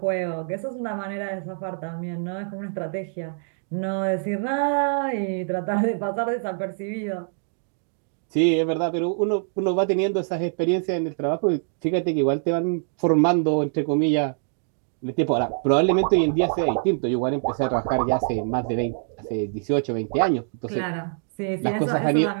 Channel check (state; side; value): silent; left; digital silence